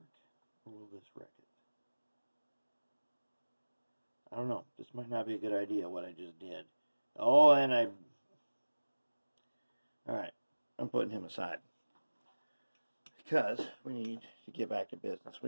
or will this wreck it? I don't know. This might not be a good idea, what I just did. Oh, and I... Alright, I'm putting him aside. Because we need to get back to business.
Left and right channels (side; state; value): both; inverted; correlation -1.00